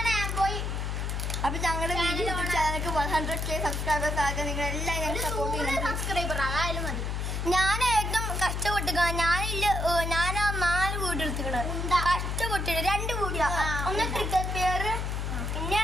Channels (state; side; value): noise; left; hum, 2 dB below the sound